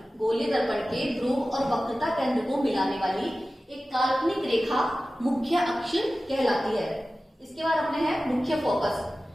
गोलीय दर्पण के ध्रुव और वक्रता केंद्र को मिलाने वाली एक काल्पनिक रेखा मुख्य अक्ष कहलाती है। इसके बाद अपने है मुख्य फोकस।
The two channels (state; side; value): normal; both; correlation 0.96